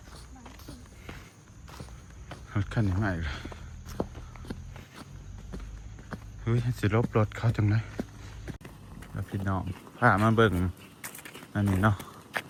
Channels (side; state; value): both; identical; correlation 1.00